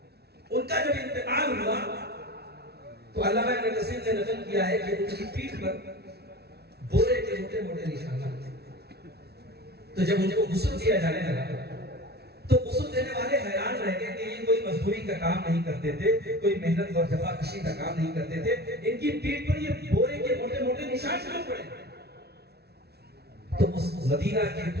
ان کا جب انتقال ہوا تو علامہ ابن کثیر نے نقل کیا ہے کہ ان کی پیٹھ پر بورے کے موٹے موٹے نشانات تھے۔ تو جب ان کو غسل دیا جانے لگا تو غسل دینے والے حیران رہ گئے کہ یہ کوئی مزدوری کا کام نہیں کرتے تھے، کوئی محنت اور جفاکشی کا کام نہیں کرتے تھے، ان کی پیٹھ پر یہ بورے کے موٹے موٹے نشان کیوں پڑے؟ تو اس مدینہ کے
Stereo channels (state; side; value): late; left; 0.47 ms